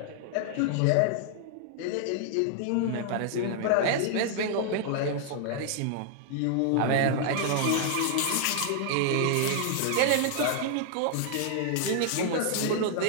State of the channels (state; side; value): different; both; correlation 0.00